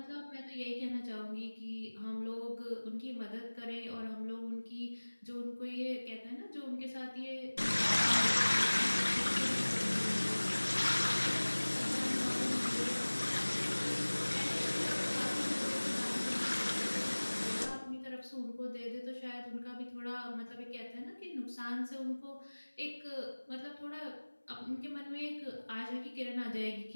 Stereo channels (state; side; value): inverted; both; correlation -1.00